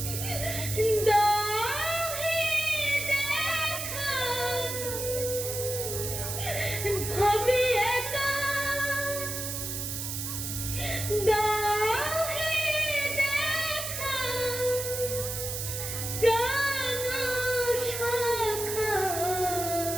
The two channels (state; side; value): noise; right; hiss, 4 dB below the sound